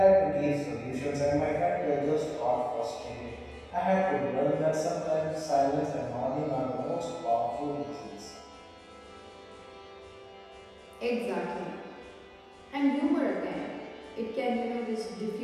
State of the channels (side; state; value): both; identical; correlation 1.00